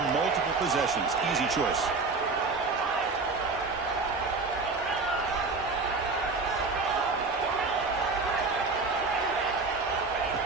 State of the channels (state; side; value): quieter; left; 4.0 dB